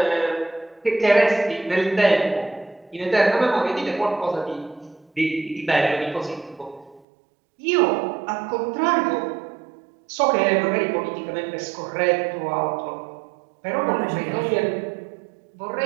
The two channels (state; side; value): drops out; left; at 7.0 s